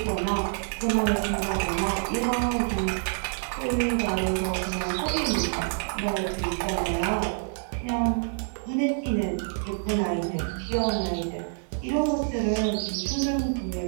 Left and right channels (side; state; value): left; silent; 59 dB below the other